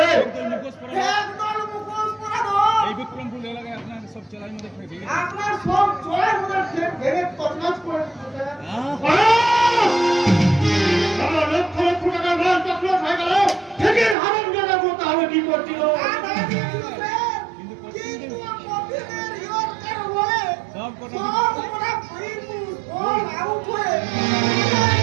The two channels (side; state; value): left; drops out; at 14.2 s